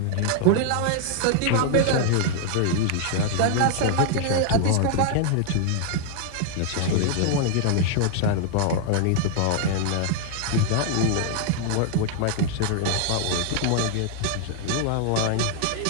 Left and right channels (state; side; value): different; both; correlation 0.00